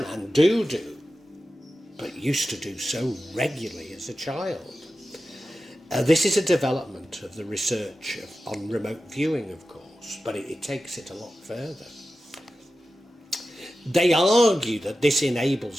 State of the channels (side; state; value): both; normal; correlation 0.93